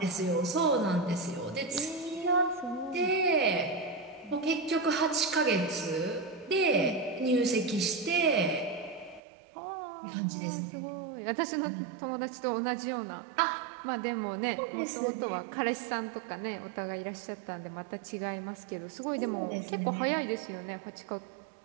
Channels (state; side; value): drops out; left; at 9.2 s